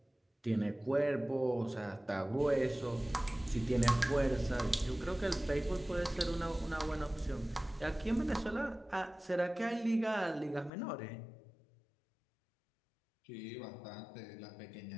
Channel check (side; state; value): right; drops out; at 10.7 s